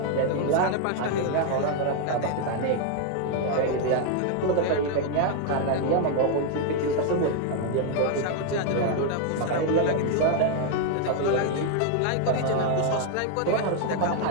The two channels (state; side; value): different; both; correlation 0.00